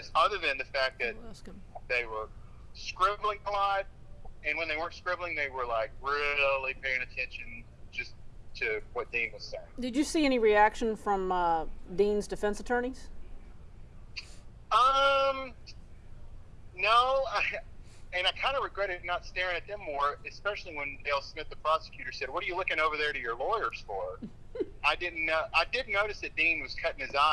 other than the fact that they were scribbling a lot. And when they weren't scribbling, they were like really paying attention just to what Dean was saying. Did you see any reaction from Dean's defense attorneys? No, and I kind of regretted not staring at them more, especially when Dale Smith, the prosecutor, said, "What are you looking over there to your lawyers for?" I did notice that Dean was cutting his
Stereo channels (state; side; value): identical; both; correlation 1.00